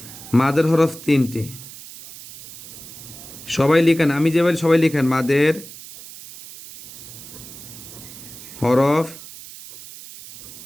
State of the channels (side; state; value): right; noise; hiss, 15 dB below the sound